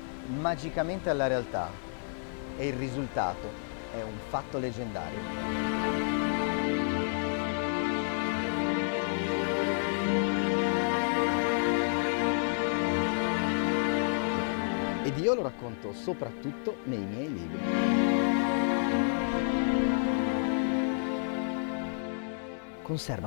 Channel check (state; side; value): silent; right; digital silence